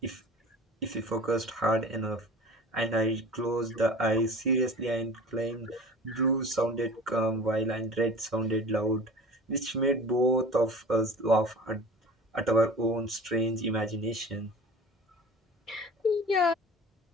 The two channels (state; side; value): normal; both; correlation 0.41